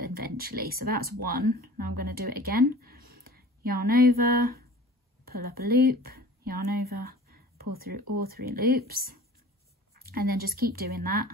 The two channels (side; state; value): both; normal; correlation 0.42